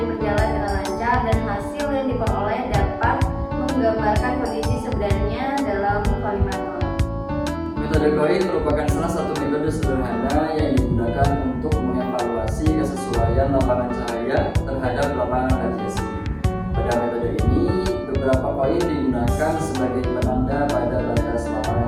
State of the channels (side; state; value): both; identical; correlation 1.00